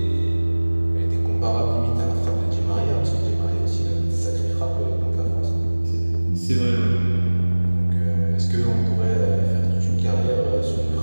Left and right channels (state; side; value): inverted; both; correlation -1.00